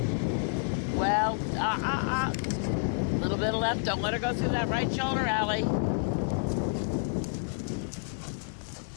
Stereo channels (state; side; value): silent; right; 58 dB below the other